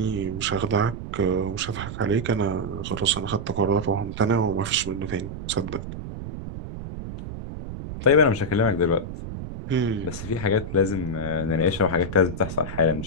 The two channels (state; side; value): noise; right; rumble, 8 dB below the sound